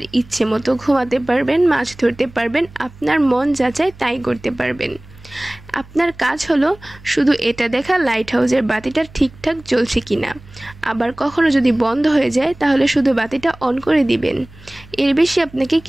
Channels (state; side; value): noise; right; hum, 22 dB below the sound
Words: ইচ্ছে মতো ঘুমাতে পারবেন, মাছ ধরতে পারবেন, আপনার মন যা চায় তাই করতে পারবেন। আপনার কাজ হলো শুধু এটা দেখা লাইট হাউসের বাতিটা ঠিকঠাক জ্বলছে কিনা। আবার কখনো যদি বন্ধ হয়ে যায় তাহলে শুধু বাতিটা অন করে দিবেন। এর বেশি আপনাকে